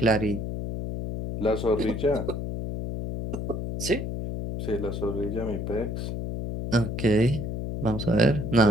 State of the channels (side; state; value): left; noise; hum, 4 dB below the sound